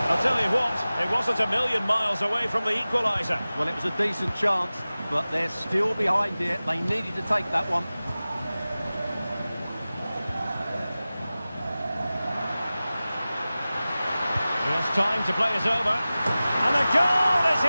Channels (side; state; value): both; inverted; correlation -0.97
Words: I'll tell you what, it wasn't a million miles away from the equaliser. Well, it was a decent chance, but they're still behind here. They needed to take that one. He has time to play it over. And a goal it